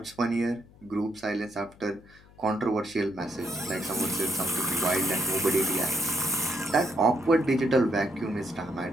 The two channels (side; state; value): left; noise; hum, 25 dB below the sound